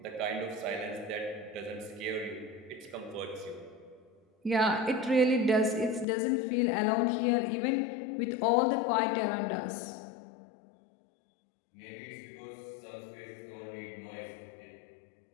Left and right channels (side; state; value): right; drops out; at 6.1 s